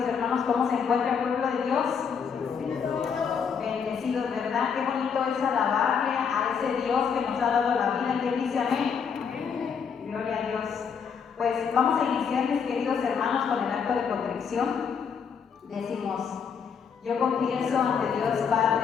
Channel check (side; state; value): right; quieter; 6.7 dB